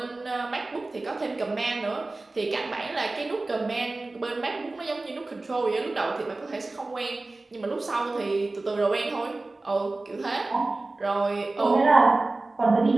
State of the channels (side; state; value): left; quieter; 3.2 dB